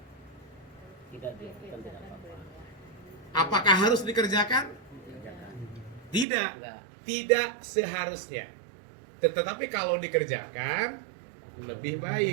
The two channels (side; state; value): left; drops out; at 6.2 s